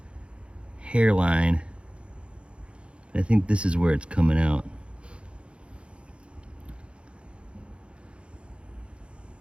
hairline. I think this is where it's coming out.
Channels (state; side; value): late; left; 0.058 ms